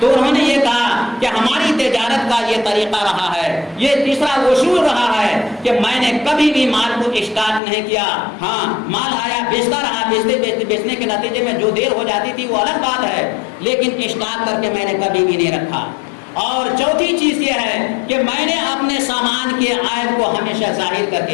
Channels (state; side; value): drops out; right; at 7.6 s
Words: انہوں نے یہ کہا کہ ہماری تجارت کا یہ طریقہ رہا ہے, یہ تیسرا اصول رہا ہے کہ میں نے کبھی بھی مال کو اسٹاک نہیں کیا. ہاں مال آیا بیچتا رہا, بیچنے کے نتیجے میں جو دیر ہو جاتی تھی وہ الگ بات ہے, لیکن اسٹاک کر کے میں نے کبھی بھی نہیں رکھا. اور چوتھی چیز یہ ہے کہ میں نے اپنے سامان کے عیب کو ہمیشہ ظاہر کر